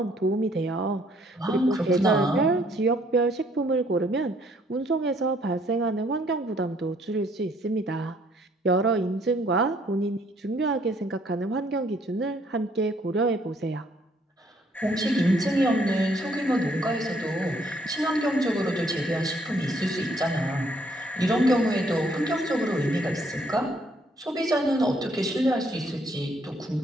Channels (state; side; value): normal; both; correlation 0.66